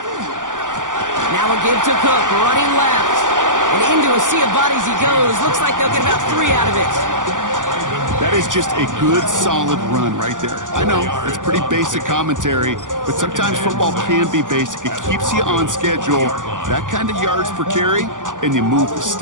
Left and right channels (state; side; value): late; left; 0.87 ms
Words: Now a give to Cook, running left. And into a sea of bodies he goes. Looks like they'll get about 3 out of it. That is just a good, solid run right there. I know, it's pretty basic commentary, but sometimes football can be basic. It keeps you on schedule. That kind of yards per carry, and you move the